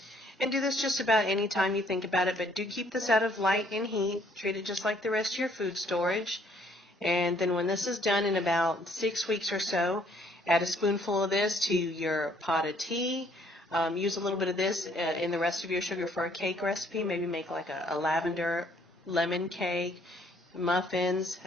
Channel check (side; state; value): both; normal; correlation 0.64